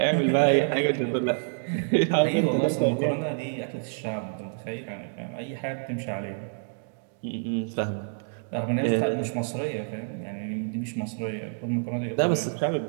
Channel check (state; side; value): silent; left; digital silence